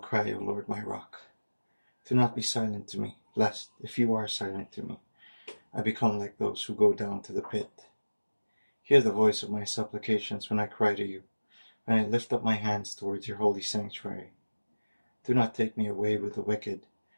O Lord my rock. Do not be silent to me, lest, if you are silent to me, I become like those who go down to the pit. Hear the voice of my supplications when I cry to you, when I lift up my hands towards your holy sanctuary. Do not take me away with the wicked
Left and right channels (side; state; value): both; inverted; correlation -1.00